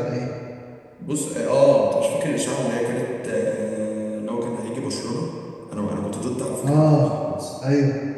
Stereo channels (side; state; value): both; identical; correlation 1.00